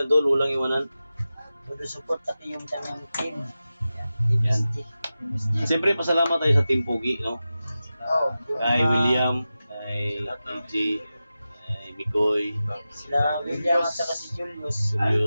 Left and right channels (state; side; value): inverted; both; correlation -0.94